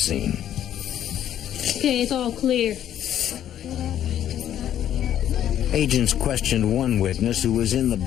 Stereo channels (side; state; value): right; quieter; 10.9 dB